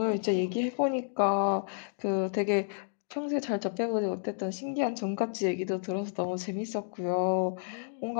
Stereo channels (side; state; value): right; silent; digital silence